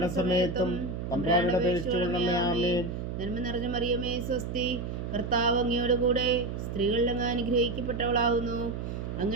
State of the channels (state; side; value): noise; right; hum, 5 dB below the sound